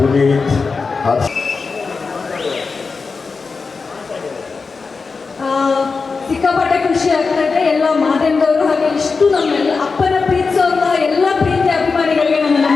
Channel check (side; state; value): right; quieter; 4.6 dB